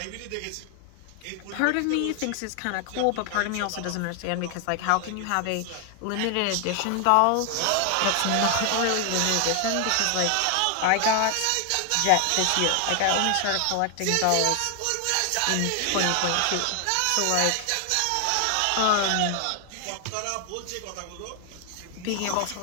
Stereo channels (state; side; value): different; both; correlation 0.00